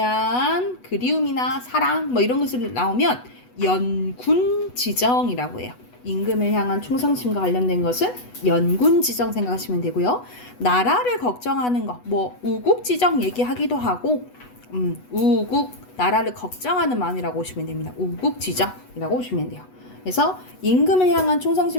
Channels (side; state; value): right; late; 8.1 ms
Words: 그리움이나 사랑 이런 것을 나오면 연군지정이라고 해요. 임금을 향한 충성심과 관련된 것은 연군지정 생각하시면 되고요. 나라를 걱정하는 거, 우국지정 얘기하기도 하고 우국, 나라를 걱정하는 마음이라고 보시면 됩니다. 우국지정이라고 보시면 돼요. 그래서 임금을 향한